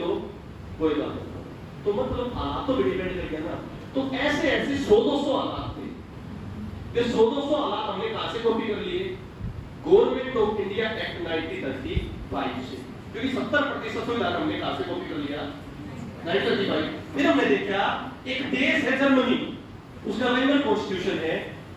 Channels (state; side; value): identical; both; correlation 1.00